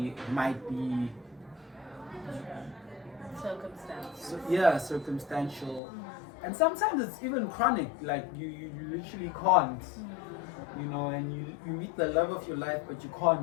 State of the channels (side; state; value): right; drops out; at 5.8 s